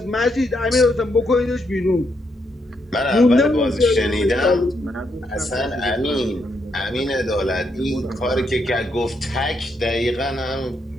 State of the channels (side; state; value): both; normal; correlation 0.78